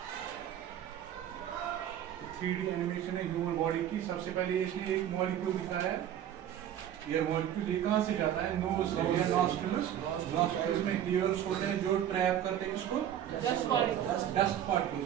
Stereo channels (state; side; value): quieter; left; 10.7 dB